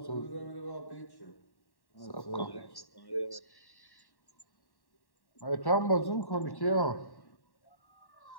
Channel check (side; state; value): right; late; 1.1 ms